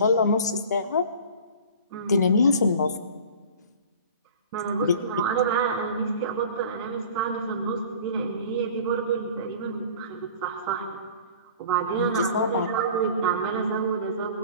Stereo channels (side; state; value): both; inverted; correlation -0.43